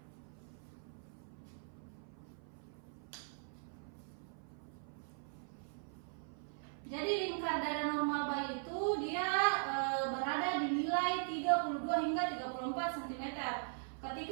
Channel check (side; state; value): left; silent; 51 dB below the other